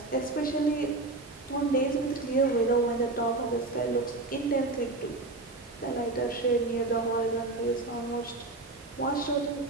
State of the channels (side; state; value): left; quieter; 3.1 dB